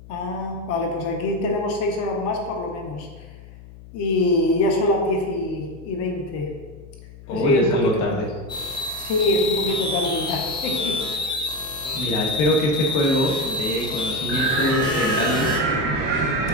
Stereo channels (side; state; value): left; noise; hum, 18 dB below the sound